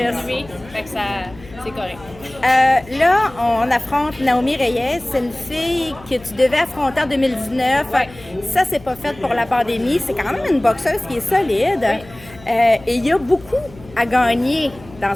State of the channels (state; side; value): noise; left; hum, 21 dB below the sound